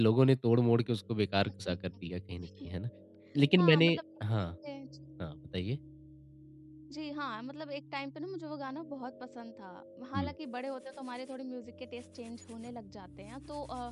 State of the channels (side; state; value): both; identical; correlation 1.00